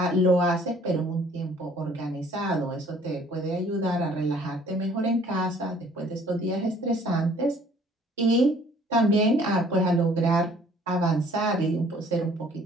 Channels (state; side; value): normal; both; correlation 0.57